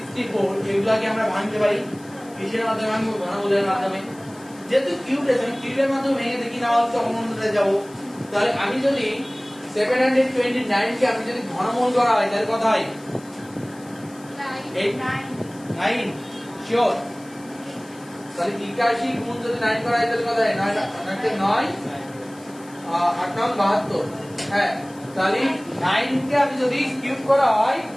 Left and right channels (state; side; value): noise; left; hiss, 24 dB below the sound